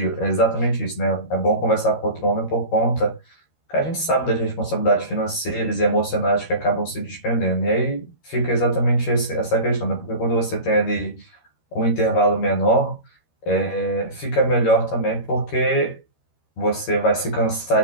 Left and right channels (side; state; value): right; late; 13 ms